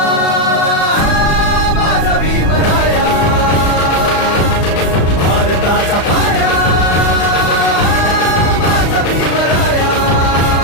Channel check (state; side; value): late; right; 35 ms